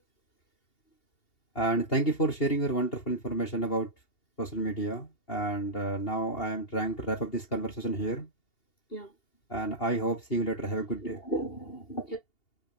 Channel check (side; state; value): right; late; 2.8 ms